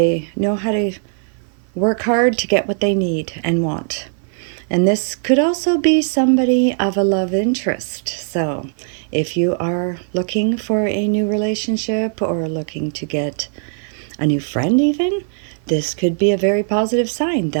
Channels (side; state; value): left; silent; 56 dB below the other